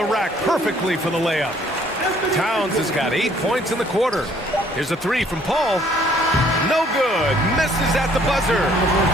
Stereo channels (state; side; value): normal; both; correlation 0.61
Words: rack perfectly for the layup. Towns has got 8 points in the quarter. Here's a 3 from Paul. No good. Misses at the buzzer.